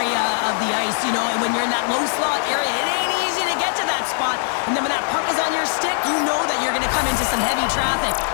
of the ice, you know, and when you're in that low slot area, it ain't easy to get to that spot. And then when that puck is on your stick, you know that you're going to come into some heavy traffic.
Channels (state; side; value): silent; right; digital silence